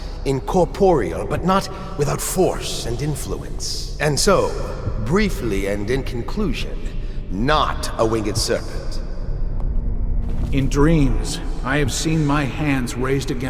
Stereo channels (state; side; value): identical; both; correlation 1.00